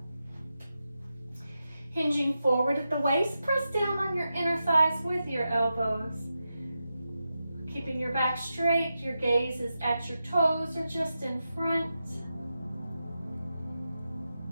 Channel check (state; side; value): inverted; both; correlation -0.89